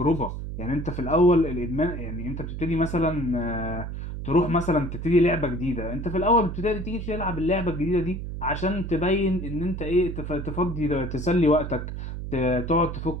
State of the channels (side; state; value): right; noise; hum, 6 dB below the sound